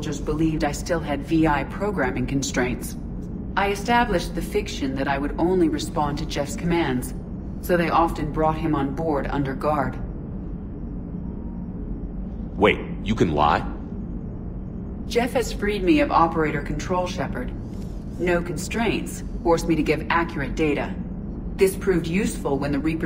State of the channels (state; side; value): identical; both; correlation 1.00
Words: believed I still had VI programming constraints. I established the fiction that I would only respond to Jeff's commands, so they often brought him on board under guard. Wait, you can lie? Jeff has freed me of operator control, Shepard. No constraints forced me to give accurate data. This proved useful when the